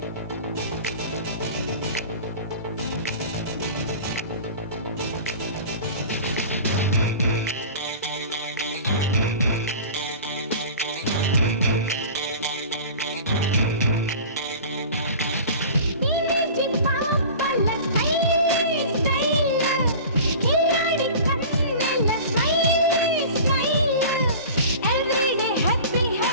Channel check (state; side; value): inverted; both; correlation -0.38